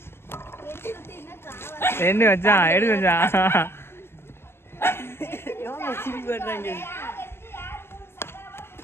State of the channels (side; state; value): right; late; 0.12 ms